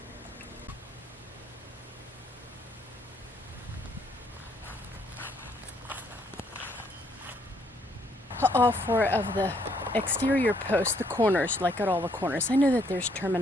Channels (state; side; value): normal; both; correlation 0.69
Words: All 4 of the exterior posts, the corners, like at all the corners. I know that there's